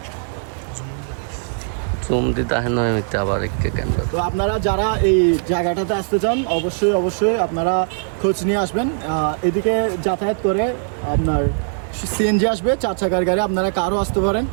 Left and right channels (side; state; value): left; silent; 59 dB below the other